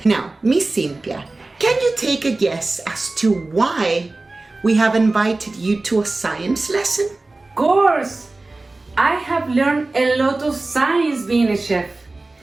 Now, Miss Cynthia, can you take a guess as to why we have invited you to a science lesson? Of course! I have learned a lot of science being a chef.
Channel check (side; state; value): left; quieter; 3.1 dB